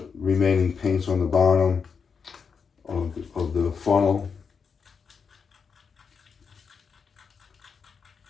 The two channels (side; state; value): right; quieter; 5.9 dB